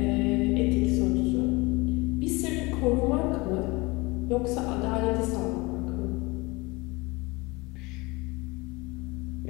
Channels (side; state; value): right; quieter; 24.4 dB